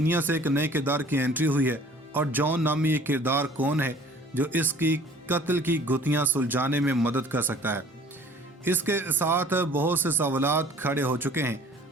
से एक नए किरदार की एंट्री हुई है। और जॉन नामी ये किरदार कौन है जो इसकी कत्ल की गुत्थियां सुलझाने में मदद कर सकता है। इसके साथ बहुत से सवालात खड़े हो चुके हैं।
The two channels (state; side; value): normal; both; correlation 0.51